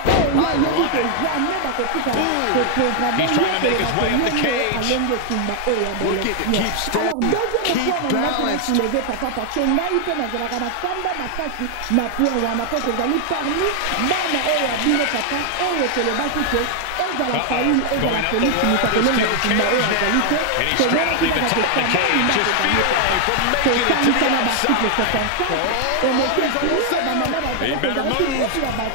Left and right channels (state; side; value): different; both; correlation 0.00